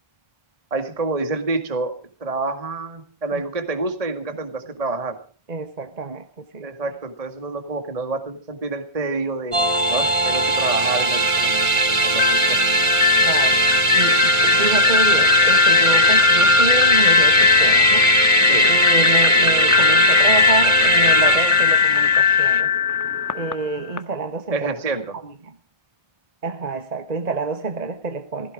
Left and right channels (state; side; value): late; left; 1.5 ms